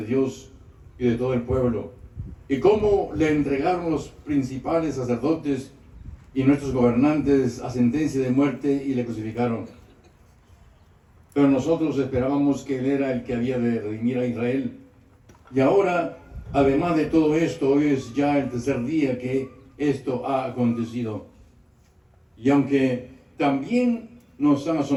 Dios y de todo el pueblo, y cómo le entregaron los principales sacerdotes y nuestros gobernantes a sentencia de muerte y le crucificaron. Pero nosotros esperábamos que Él era el que había de redimir a Israel. Y ahora, además de todo esto, hoy es ya el tercer día que esto ha acontecido. Y aunque también nos han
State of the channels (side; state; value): both; identical; correlation 1.00